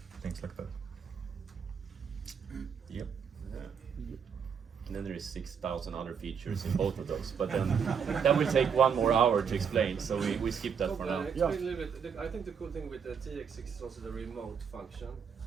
things like that. Yep. And then there is 6,000 other features in both of those, but then that will take 1 more hour to explain, so we skip that for now. Explain a little bit. I think the cool thing with the TX-6 is also the remote function,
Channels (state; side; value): quieter; left; 6.8 dB